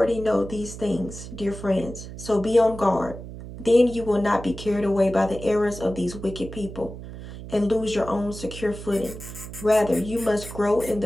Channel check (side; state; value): right; noise; hum, 12 dB below the sound